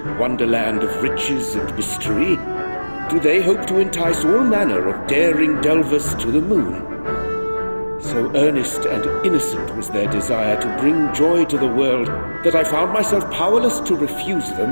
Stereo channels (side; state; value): both; inverted; correlation -1.00